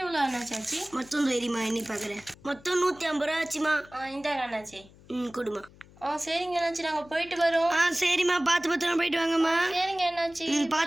எவ்வளோ அண்ணாச்சி ஆச்சு? மொத்தம் தெரியுமா? எண்ணி பார்க்குறேன். மொத்தம் 150 ரூபா ஆச்சுமா. இந்தாங்க அண்ணாச்சி. கொடுமா. சரிங்க அண்ணாச்சி, நாங்கள் போயிட்டு வரோம். சரிம்மா. பார்த்து பத்திரமா போயிட்டு வாங்கம்மா. சரிங்க அண்ணாச்சி.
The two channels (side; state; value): left; noise; hum, 24 dB below the sound